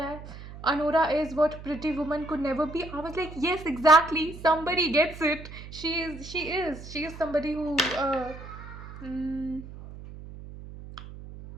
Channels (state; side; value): noise; right; hum, 14 dB below the sound